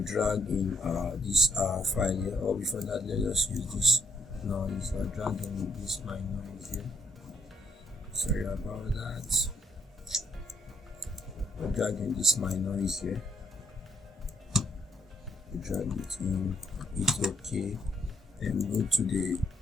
drag in this file here. Or before that, let's use this noise. I'll drag in this my noise here. Sorry about that. I'm dragging this my noise here. Drag it in, it's okay. Then go to the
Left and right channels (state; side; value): normal; both; correlation 0.71